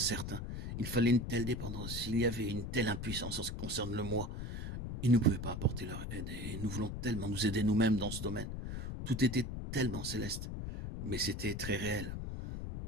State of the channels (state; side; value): noise; left; rumble, 5 dB below the sound